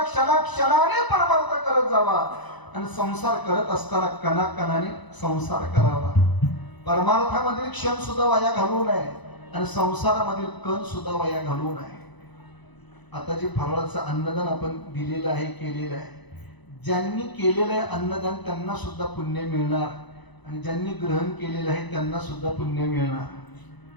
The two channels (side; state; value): right; late; 1.0 ms